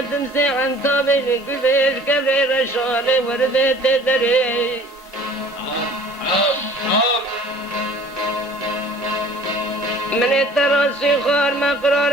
تمسي عن طابلي كل كبري رشالي وردي تدري من التراسي خار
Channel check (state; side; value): normal; both; correlation 0.50